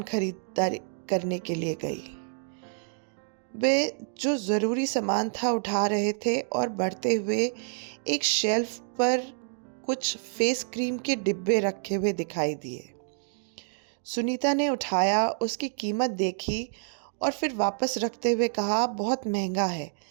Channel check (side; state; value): left; silent; digital silence